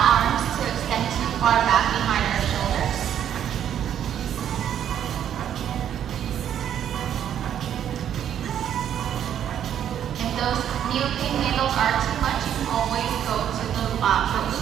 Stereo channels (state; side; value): quieter; left; 9.8 dB